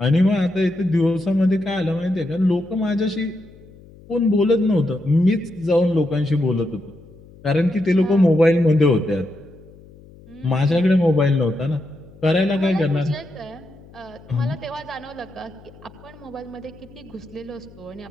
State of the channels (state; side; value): noise; left; hum, 23 dB below the sound